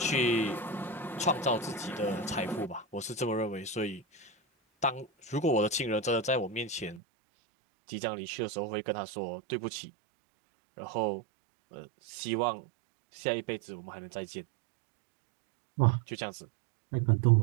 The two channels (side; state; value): left; drops out; at 7.0 s